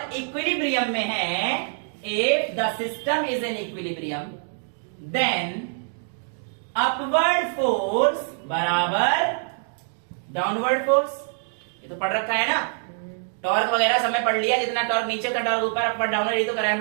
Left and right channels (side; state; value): left; silent; 61 dB below the other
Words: इक्विलिब्रियम में है। If the system is in equilibrium then upward force बराबर डाउनवर्ड फोर्स। ये तो पढ़ रखा है ना, टॉर्क वगैरह सब में पढ़ लिया, जितना टॉर्क नीचे का टॉर्क ऊपर, अपर डाउनवर्ड, ये तो कराया हम